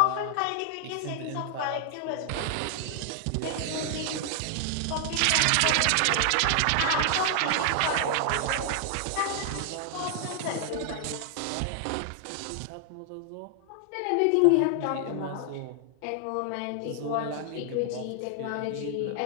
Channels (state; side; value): different; both; correlation 0.00